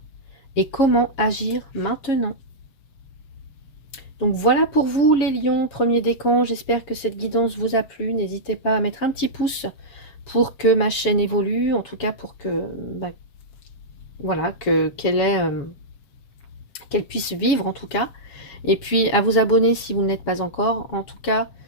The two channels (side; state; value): right; late; 7.2 ms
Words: et comment agir maintenant. Donc voilà pour vous les lions, premier décan. J'espère que cette guidance vous a plu. N'hésitez pas à mettre un petit pouce pour que ma chaîne évolue, en tout cas pour que voilà, qu'elle puisse vivre en tout cas. Et puis à vous abonner si vous ne l'êtes pas encore. En tout cas,